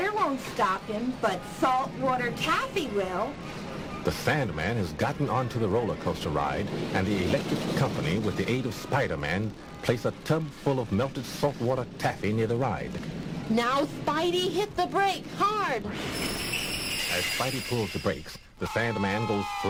won't stop him, but saltwater taffy will. The Sandman has gotten onto the roller coaster ride, and the electric company, with the aid of Spider-Man, place a tub full of melted saltwater taffy near the ride. Now Spidey hit the brake hard. As Spidey pulls the brakes, the Sandman goes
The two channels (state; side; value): identical; both; correlation 1.00